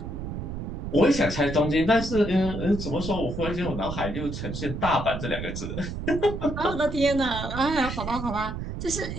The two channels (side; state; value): right; noise; rumble, 6 dB below the sound